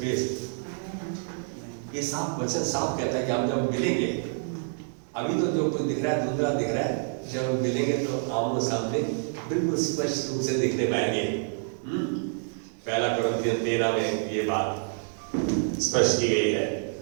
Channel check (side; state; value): left; silent; digital silence